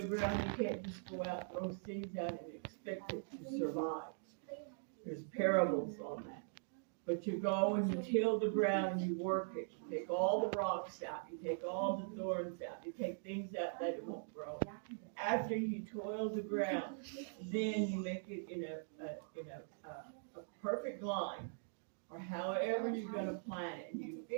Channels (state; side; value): silent; left; digital silence